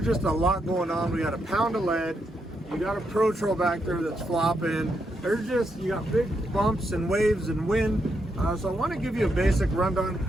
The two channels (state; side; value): normal; both; correlation 0.80